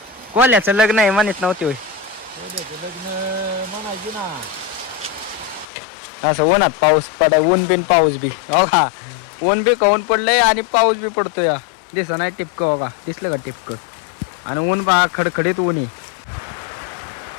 कोल्याचं लग्न आहे म्हणत नव्हती होय? लग्न म्हणायची ना. असं उन्हात पाऊस पडाय. ऊन बिन पाऊस बी. हो का ऊन बी कवून पडलंय आणि पाऊस बी पडतोय. दिसत नाही टिपकं. हो का दिसलं का टिपकं? आणि ऊन बा खडखडीत ऊन आहे.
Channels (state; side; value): drops out; right; at 5.7 s